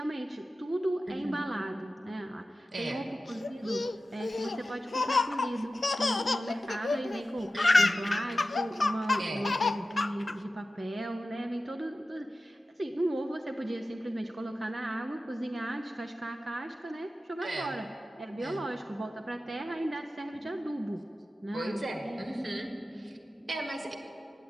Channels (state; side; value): normal; both; correlation 0.94